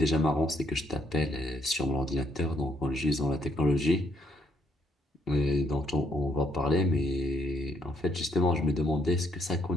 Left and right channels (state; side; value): normal; both; correlation 0.71